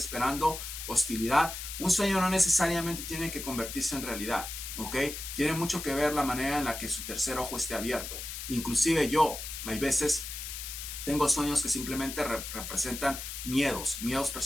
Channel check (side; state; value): left; noise; hiss, 8 dB below the sound